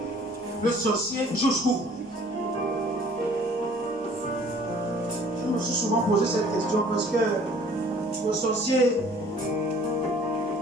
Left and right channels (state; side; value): normal; both; correlation 0.53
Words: le sorcier jusqu'où? Je me suis souvent posé cette question parce que le sorcier,